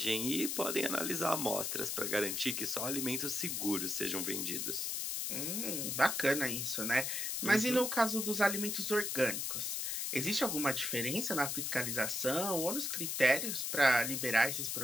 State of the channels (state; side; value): noise; left; hiss, 1 dB below the sound